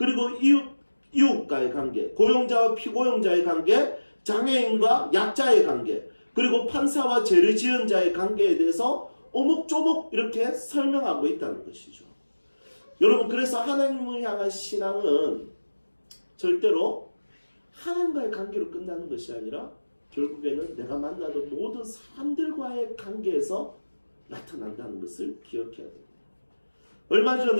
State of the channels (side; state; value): both; inverted; correlation -1.00